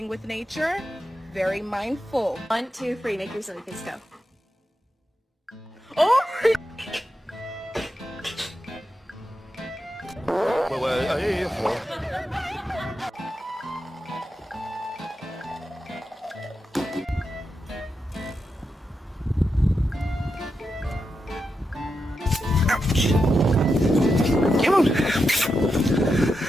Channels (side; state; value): both; normal; correlation 0.87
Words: with nature? Very mindful. 1, 2, 3, make your silly face go. Oh! 喂喂，哎，